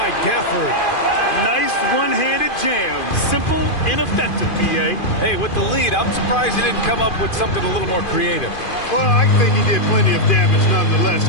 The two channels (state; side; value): late; right; 2.5 ms